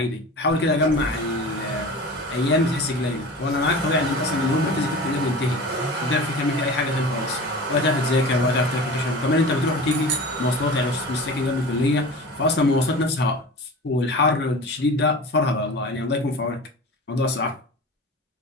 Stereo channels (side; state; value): both; normal; correlation 0.35